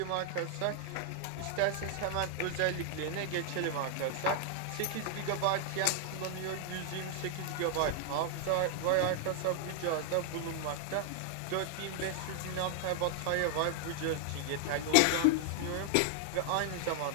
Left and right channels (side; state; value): both; different; correlation 0.00